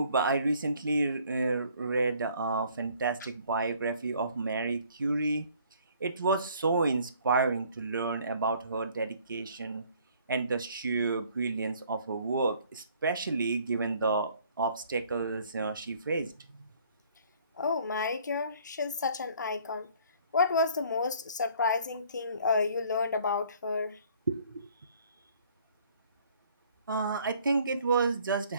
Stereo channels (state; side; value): inverted; both; correlation -0.59